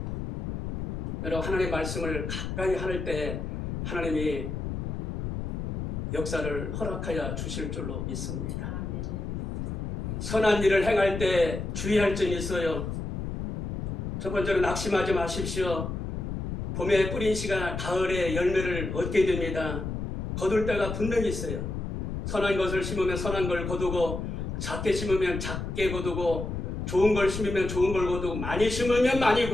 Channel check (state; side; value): noise; left; rumble, 4 dB below the sound